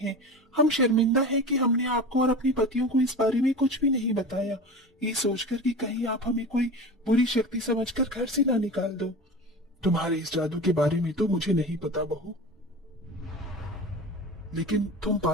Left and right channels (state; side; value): normal; both; correlation 0.31